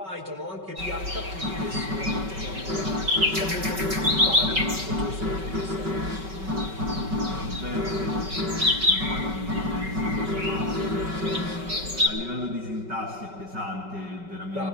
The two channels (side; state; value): left; late; 5.3 ms